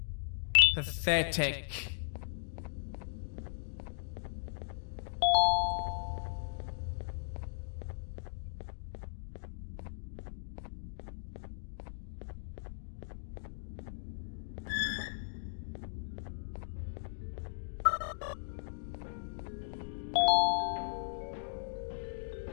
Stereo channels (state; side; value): silent; right; digital silence